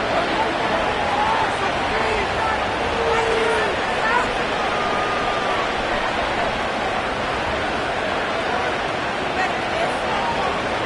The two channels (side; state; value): both; identical; correlation 1.00